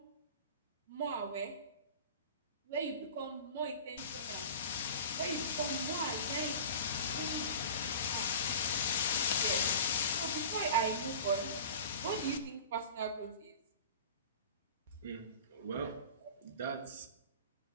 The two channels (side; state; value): both; inverted; correlation -0.37